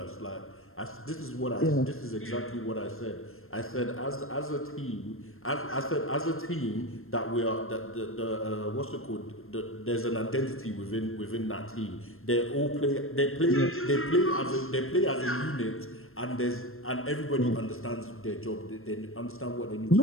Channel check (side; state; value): right; late; 0.61 ms